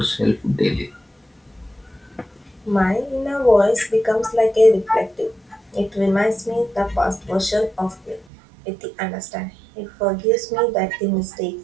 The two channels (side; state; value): left; drops out; at 8.2 s